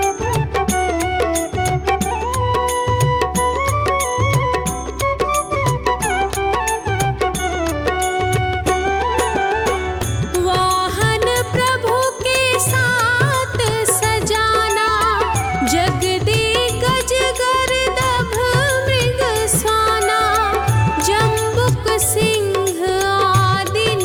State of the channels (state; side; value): identical; both; correlation 1.00